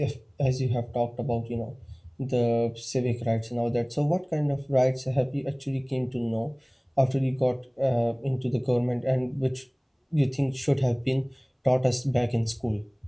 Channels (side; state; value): both; identical; correlation 1.00